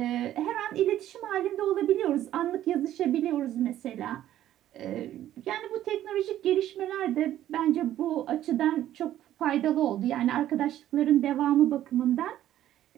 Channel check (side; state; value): left; quieter; 12.5 dB